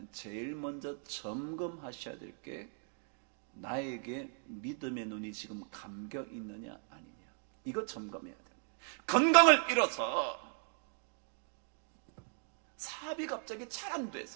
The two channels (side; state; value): left; silent; 53 dB below the other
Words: 제일 먼저 점검하셔야 될 게 나에게 믿음의 눈이 지금 감겨 있느냐 아니냐, 이거 점검해야 됩니다. 건강을 잃어서 사업이 갑자기 잘 안